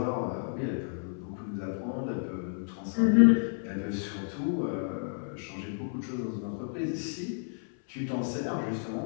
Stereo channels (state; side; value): silent; right; 57 dB below the other